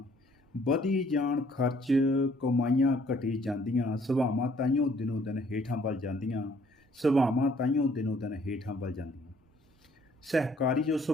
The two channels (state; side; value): normal; both; correlation 0.61